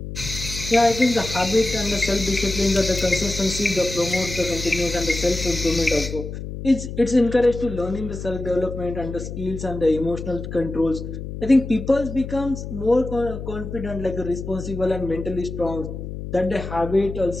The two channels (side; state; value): left; noise; hum, 8 dB below the sound